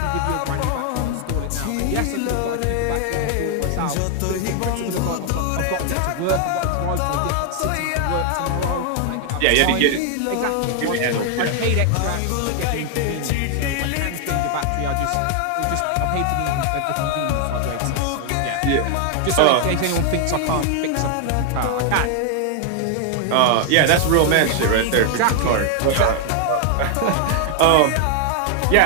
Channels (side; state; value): both; different; correlation 0.00